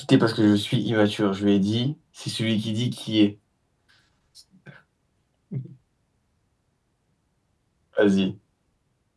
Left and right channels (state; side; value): identical; both; correlation 1.00